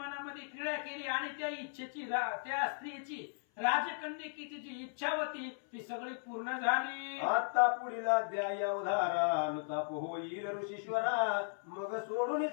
क्रीडा केली आणि त्या इच्छेची त्या स्त्रीची राजकन्यकेची जी इच्छा होती ती सगळी पूर्ण झाली. आता पुढील अध्याय अवधारा अनुताप होईल ऋषीश्वरा, मग सोडून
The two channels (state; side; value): silent; right; 53 dB below the other